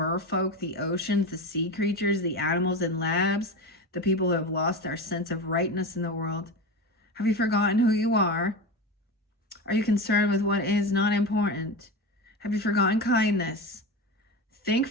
the oceans, the sea creatures, the animals in labs, the people who have lost their sense of rightness in the world. Have you forgotten who you are? Are you concerned with what is not important? Have you forgotten kindness? Think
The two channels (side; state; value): both; normal; correlation 0.23